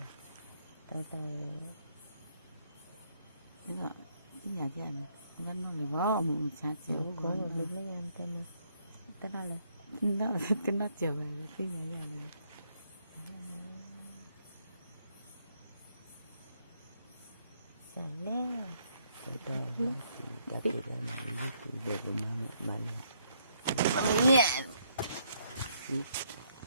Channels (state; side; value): inverted; both; correlation -0.71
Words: nhà chị anh vẫn nói là bó ông cha chiều có một lúc mấy anh tên này tên nào là nó chiều về cái nhà chị anh Sài lé